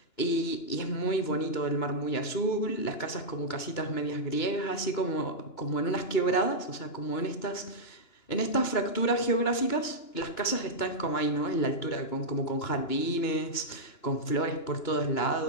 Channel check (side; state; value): right; late; 2.9 ms